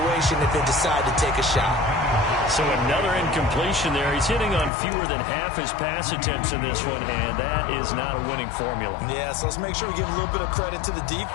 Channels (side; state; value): right; drops out; at 4.7 s